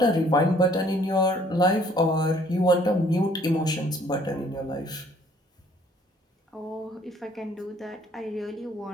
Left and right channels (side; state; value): both; normal; correlation 0.60